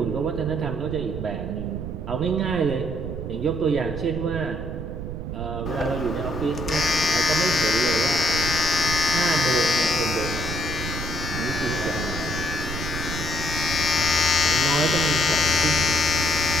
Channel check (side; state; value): right; noise; rumble, 6 dB below the sound